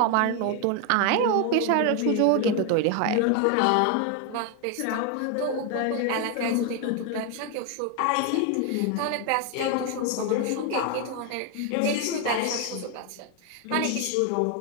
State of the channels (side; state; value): both; different; correlation 0.01